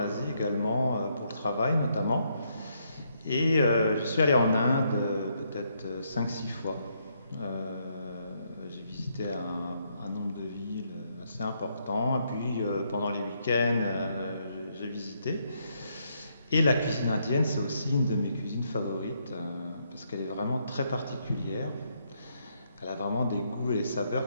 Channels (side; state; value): both; inverted; correlation -0.75